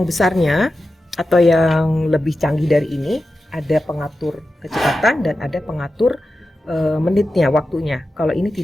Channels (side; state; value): both; normal; correlation 0.92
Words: besarnya atau yang lebih canggih dari ini, ada pengatur kecepatan dan ada pengatur menitnya, waktunya. Kalau ini